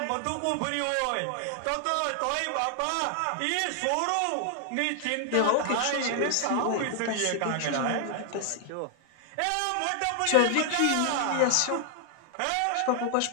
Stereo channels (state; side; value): different; both; correlation 0.00